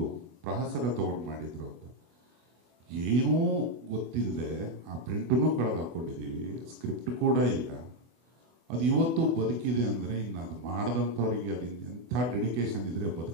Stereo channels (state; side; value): late; left; 24 ms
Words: ಪ್ರಹಸನ ತಗೊಂಡು ಮಾಡಿದ್ರು ಅಂತ. ಏನೂ ಗೊತ್ತಿಲ್ಲದೆ ಆ ಪ್ರಿಂಟನ್ನು ಕಳೆದು ಹಾಕೊಂಡಿದ್ದೀವಿ, ಸ್ಕ್ರಿಪ್ಟ್ ಕೂಡ ಇಲ್ಲ. ಅದು ಇವತ್ತು ಬದುಕಿದೆ ಅಂದರೆ ಇನ್ನು ಅದು ಮಾಡಿದಂಥವ್ರಿಗೆ ಅದು ಎಂಥ ಡೆಡಿಕೇಶನ್ ಇದ್ರೆ